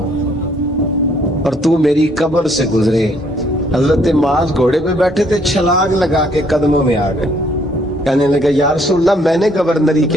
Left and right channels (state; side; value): normal; both; correlation 0.66